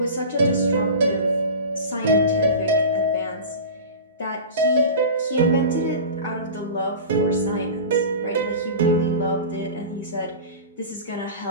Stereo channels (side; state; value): both; inverted; correlation -0.34